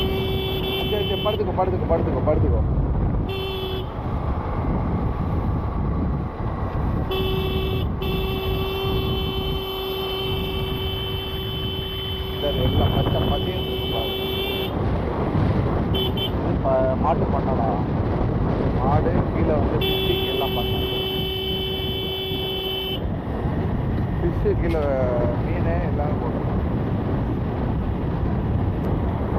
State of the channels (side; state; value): both; identical; correlation 1.00